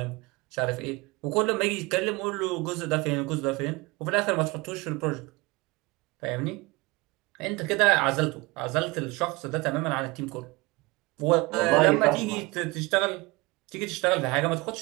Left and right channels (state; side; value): quieter; left; 24.0 dB